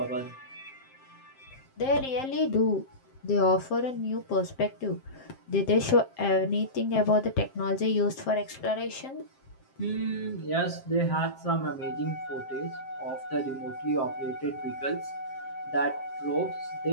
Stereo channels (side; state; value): right; late; 7.6 ms